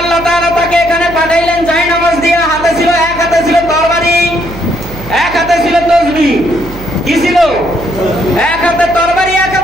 আল্লাহ তাআলা তাকে এখানে পাঠাইলেন জায়নামাজ দিয়া। হাতে ছিল, এক হাতে ছিল তরবারি, এক হাতে ছিল তসবিহ। কি ছিল? এক হাতে তরবারি, এক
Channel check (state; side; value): noise; right; hum, 14 dB below the sound